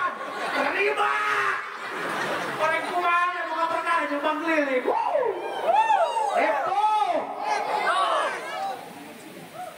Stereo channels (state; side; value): identical; both; correlation 1.00